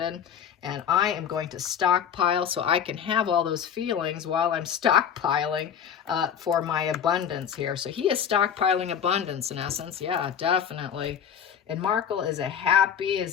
And I am going to stockpile so I can have all those feelings while I'm stockpiling for my abundance here. So he is stockpiling abundance in essence. Yeah, definitely. And Markle is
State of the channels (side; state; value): right; quieter; 8.3 dB